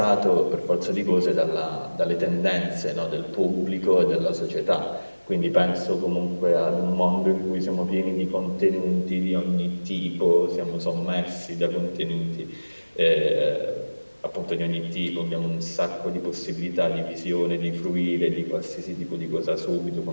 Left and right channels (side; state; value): both; inverted; correlation -1.00